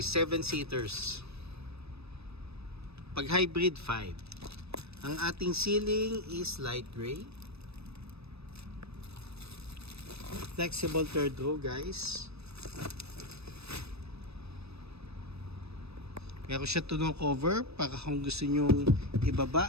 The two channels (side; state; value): left; late; 0.78 ms